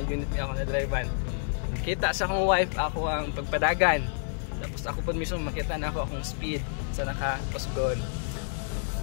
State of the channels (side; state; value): right; silent; 59 dB below the other